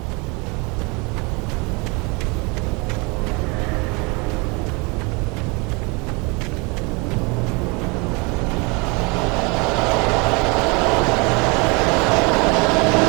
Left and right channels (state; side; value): quieter; left; 28.9 dB